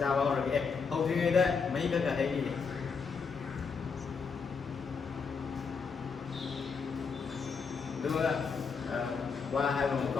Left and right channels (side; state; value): right; quieter; 5.4 dB